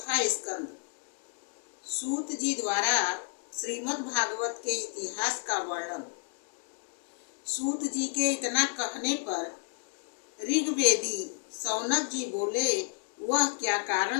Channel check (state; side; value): silent; right; 57 dB below the other